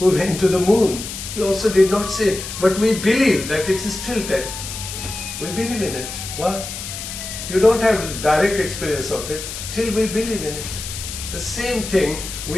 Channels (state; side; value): noise; left; hiss, 8 dB below the sound